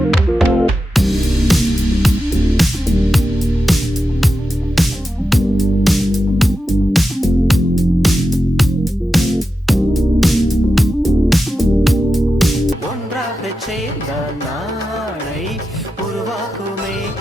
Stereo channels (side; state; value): both; normal; correlation 0.90